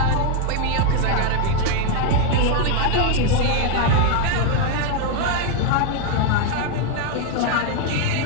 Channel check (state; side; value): different; both; correlation 0.01